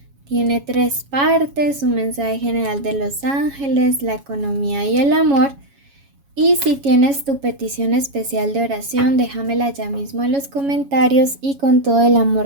Tiene 3 partes: un mensaje general de los ángeles, la economía y el amor. Y si tienes tu petición especial de oración, déjamela ya mismo en los comentarios y con todo el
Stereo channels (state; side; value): late; left; 7.2 ms